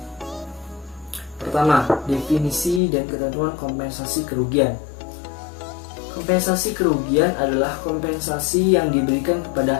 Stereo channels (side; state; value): right; drops out; at 2.8 s